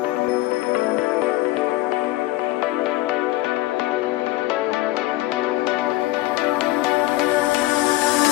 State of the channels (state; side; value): quieter; right; 17.9 dB